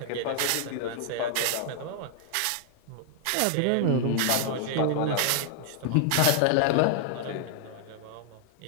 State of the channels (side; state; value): both; different; correlation -0.01